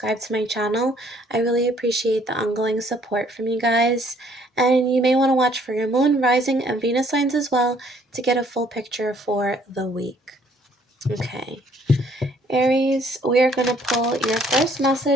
to my channel. I really appreciate the ongoing support from you guys. And you may want to watch for your moon, rising, and Venus signs as well to get a full picture for the week. Okay. Aries, we are going to pull your first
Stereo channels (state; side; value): normal; both; correlation 0.63